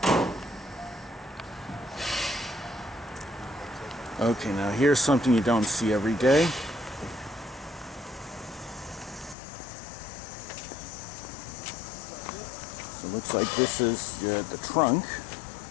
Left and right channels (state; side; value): drops out; right; at 9.3 s